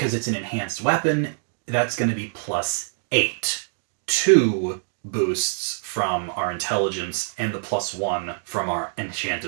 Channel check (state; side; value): silent; left; digital silence